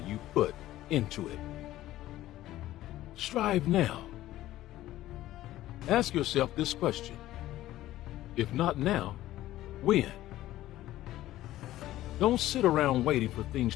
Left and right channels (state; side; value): quieter; right; 14.8 dB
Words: put into it. Strive now. Ask yourself this question. If not now, when? Don't sit around waiting for things